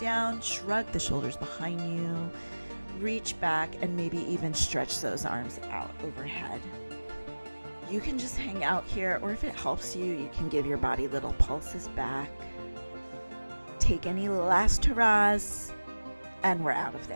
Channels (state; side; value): inverted; both; correlation -1.00